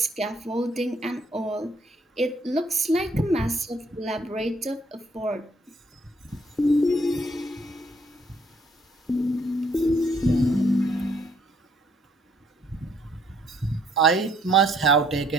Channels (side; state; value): both; normal; correlation 0.66